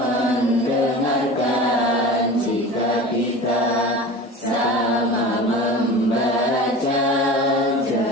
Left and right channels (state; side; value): normal; both; correlation 0.34